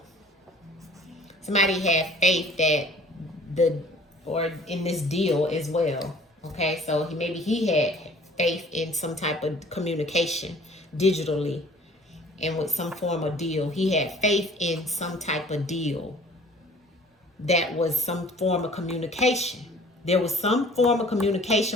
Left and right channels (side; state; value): both; normal; correlation 0.51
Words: Somebody had faith that or in this deal as well. Okay, so maybe he had faith in some type of communication digitally and with some form of deal. He had faith in some type of deal that was some form of communication. There was some form of